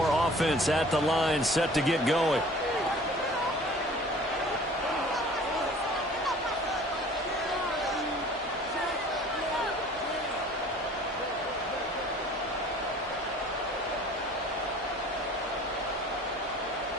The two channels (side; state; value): both; normal; correlation 0.48